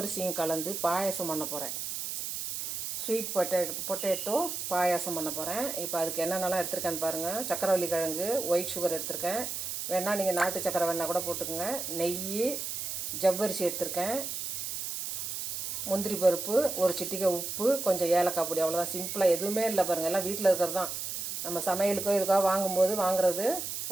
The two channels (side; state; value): right; noise; hiss, 4 dB below the sound